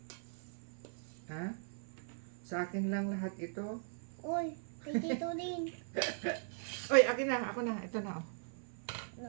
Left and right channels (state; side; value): silent; left; 51 dB below the other